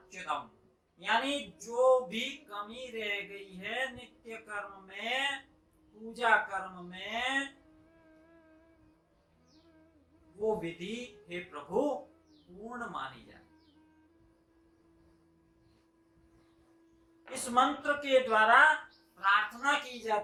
यानी जो भी कमी रह गई है नित्य कर्म में, पूजा कर्म में, वो विधि हे प्रभु पूर्ण मानी जाए। इस मंत्र के द्वारा प्रार्थना की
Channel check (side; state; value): both; identical; correlation 1.00